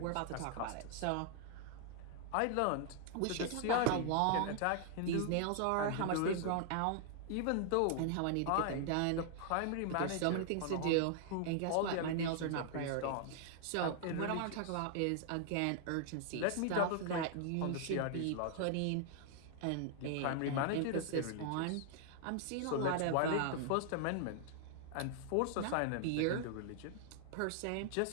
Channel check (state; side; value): different; both; correlation 0.00